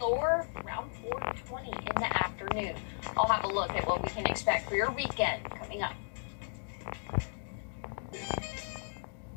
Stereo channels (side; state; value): right; silent; digital silence